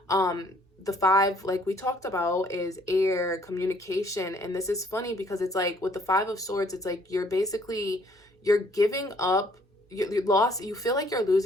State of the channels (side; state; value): both; normal; correlation 0.62